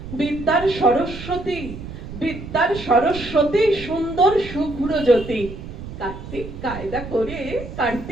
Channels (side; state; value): right; noise; rumble, 11 dB below the sound